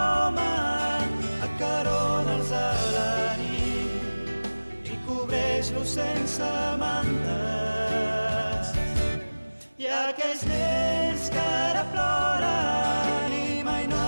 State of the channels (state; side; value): inverted; both; correlation -1.00